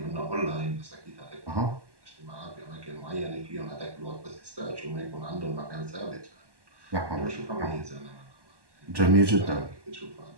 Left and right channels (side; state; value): left; late; 1.1 ms